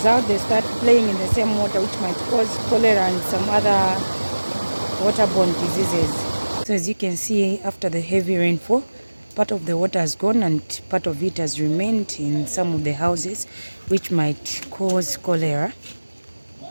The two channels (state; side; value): inverted; both; correlation -1.00